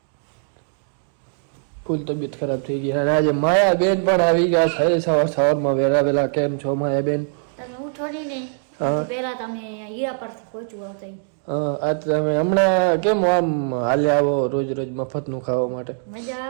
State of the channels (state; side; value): silent; left; digital silence